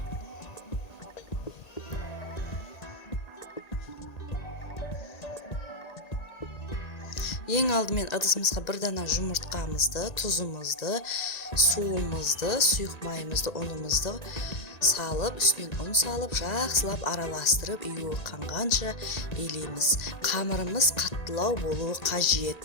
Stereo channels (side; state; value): right; late; 1.9 ms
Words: Ең алдымен ыдысымызға бір дана жұмыртқамызды, тұзымызды, суымызды, сұйық майымызды, ұнымызды салып, үстінен ұн салып, жақсылап араластырып, үйі қанғанша елейміз. Қамырымыз қаттылау болуы